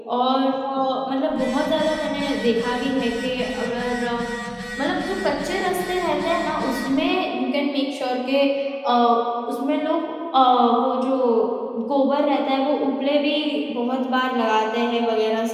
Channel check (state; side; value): identical; both; correlation 1.00